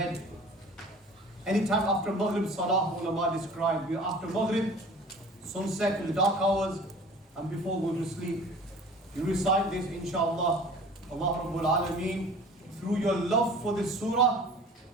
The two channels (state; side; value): normal; both; correlation 0.45